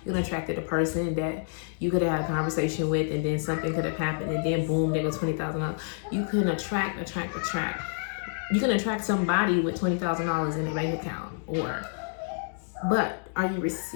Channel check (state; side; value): silent; right; digital silence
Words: You attracted a person that you could have had a conversation with, and then something could have happened, and then boom, there goes $20,000. You can attract. You can attract somebody with $20,000 in a bank account, but are you